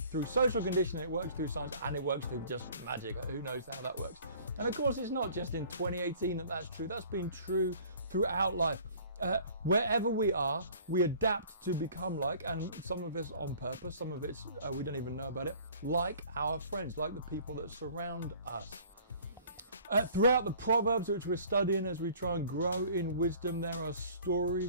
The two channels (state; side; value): inverted; both; correlation -0.51